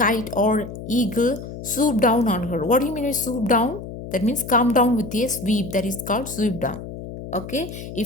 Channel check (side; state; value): left; noise; hum, 11 dB below the sound